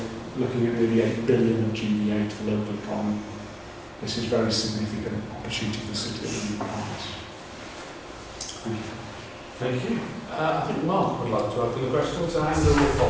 looking at nearly 8 billion of GBA to the local economy. This is a very significant opportunity for the city of the economies. Thank you. Thank you. I think Mark would like to open the question, so Andrew will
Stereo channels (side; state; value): both; identical; correlation 1.00